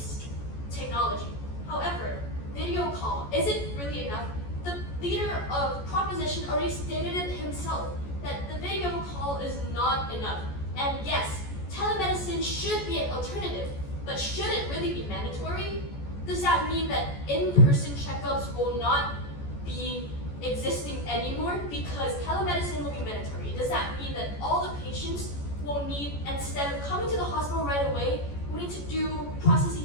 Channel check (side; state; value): right; late; 14 ms